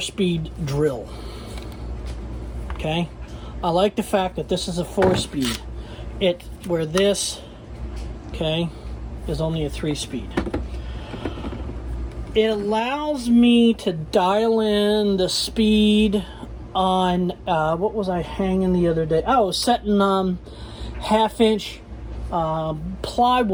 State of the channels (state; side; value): identical; both; correlation 1.00